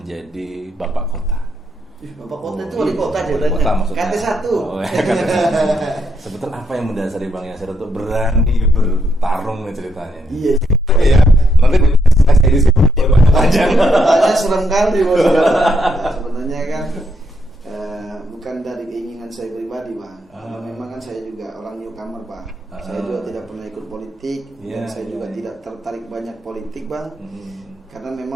bapak kota. Bapak Kota itu wali kota wali kota maksudnya. KT 1. Oh, sebetulnya apa yang mendasari Bang Yasir untuk berani bertarung nih ceritanya? Iya. Iya. Nanti saya di sini panjang. Tanya serem kali bos. Sebenarnya kan bukan dari keinginan saya pribadi Bang. Memang kan saya juga orang newcomer Pak. Saya juga tidak pernah ikut politik dan saya juga tidak tertarik banyak politik Bang. Karena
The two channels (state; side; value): normal; both; correlation 0.77